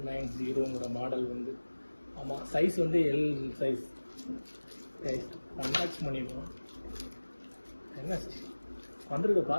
model வந்து, ஆமாம், சைஸ் வந்து எல் சைஸ். கைஸ், அன்பாக்ஸ் பண்ணிடுவோம். என்ன வந்திருக்க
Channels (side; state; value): both; inverted; correlation -1.00